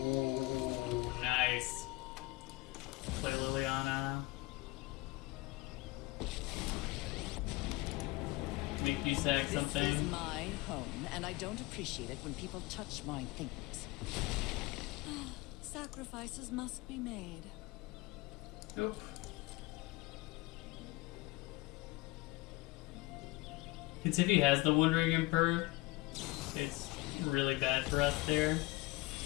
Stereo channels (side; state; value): right; quieter; 21.4 dB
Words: nice. Play Liliana. Make you sack something. This is my home, and I don't appreciate it when people touch my things. Sacrifices must be made. Nope. Because if he has the Wandering Emperor, it's really bad for us there.